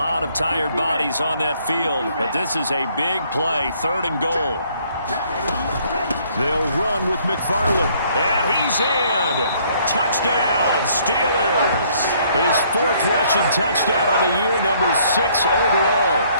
of tired bodies on that field, but this is a big play, 3rd and goal. They'll run with McFarland. And he's in. Touchdown, Steelers. His 4th rushing touchdown on the year, number 6 overall.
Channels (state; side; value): inverted; both; correlation -0.64